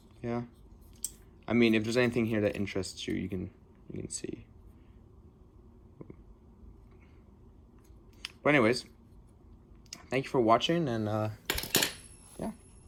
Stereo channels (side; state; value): both; identical; correlation 1.00